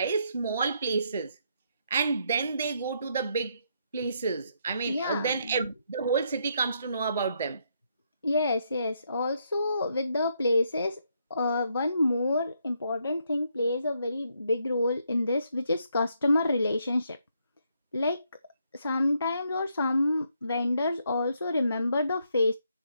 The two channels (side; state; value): both; inverted; correlation -0.75